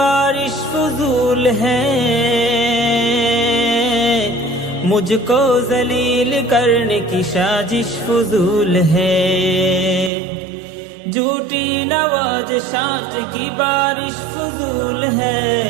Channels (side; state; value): left; drops out; at 10.1 s